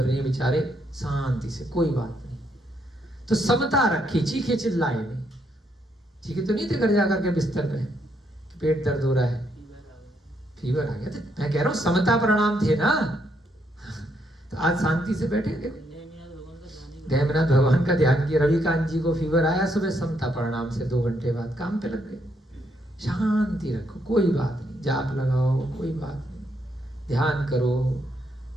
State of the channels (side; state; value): both; normal; correlation 0.75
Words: रही है बेचारे, शांति से, कोई बात नहीं। तो समता रखी, चीखे चिल्लाए नहीं, चीखे तो नहीं थे घर जाकर के बिस्तर पे कि पेट दर्द हो रहा है, फीवर आ गया, तो मैं कह रहा हूँ समता प्रणाम थे ना। तो आज शांति से बैठे, देखो देवनाथ भगवान का ध्यान किया, रविकांत जी को फीवर आया, सुबह समता प्रणाम से 2 घंटे बाद काम पे लग गए। शांति रखो, कोई बात नहीं, जाप लगाओ, कोई बात नहीं, ध्यान करो,